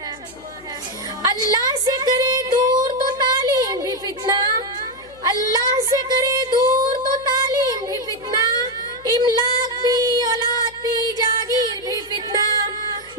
اللہ سے کرے دور تو تعلیم بھی فتنہ، اللہ سے کرے دور تو تعلیم بھی فتنہ، املاک بھی اولاد بھی جاگیر بھی فتنہ،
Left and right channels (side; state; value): left; noise; hum, 25 dB below the sound